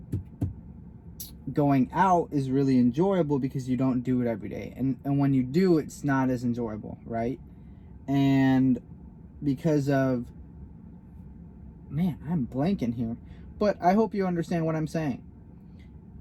Going out is really enjoyable because you don't do it every day, and when you do, it's not as enjoyable, right? And because of, man, I'm blanking here, but I hope you understand what I'm saying.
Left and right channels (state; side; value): identical; both; correlation 1.00